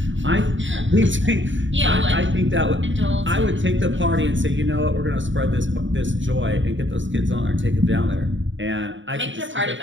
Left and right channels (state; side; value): late; left; 0.55 ms